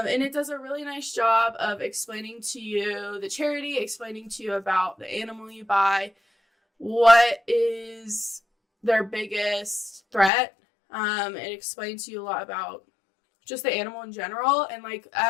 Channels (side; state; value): right; drops out; at 10.3 s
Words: it does a really nice job of explaining to you the charity, explaining to you about the animal you buy, what is their biggest threat. It explains to you a lot about just the animal in general. And like,